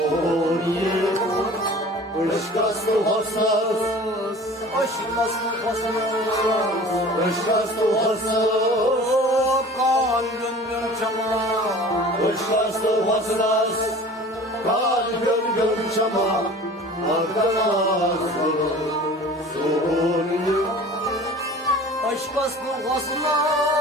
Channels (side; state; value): both; normal; correlation 0.43